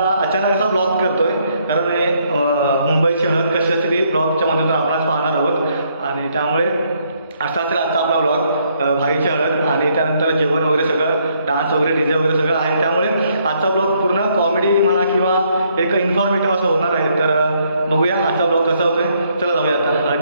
अचानक असा ब्लॉग करतोय कारण हे मुंबईची हळद कशी असते ती ब्लॉगच्या मधून आपण आज पाहणार आहोत. आणि त्यामुळे असा असेल आजचा आपला ब्लॉग भाईची हळद आणि त्यानंतर जेवण वगैरे सगळं डान्स वगैरे डीजे वगैरे सगळं आहे. त्यामुळे आजचा ब्लॉग पूर्ण कॉमेडी म्हणा किंवा एक इन्फॉर्मेटिव्ह असं होणार आहे. तर बघूया आजचा ब्लॉग कसा होतोय. चला जाऊया आता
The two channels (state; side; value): inverted; both; correlation -0.71